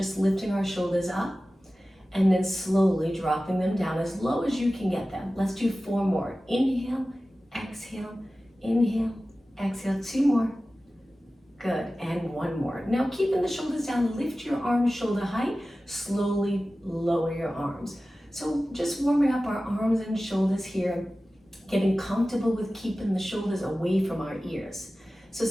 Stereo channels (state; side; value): normal; both; correlation 0.96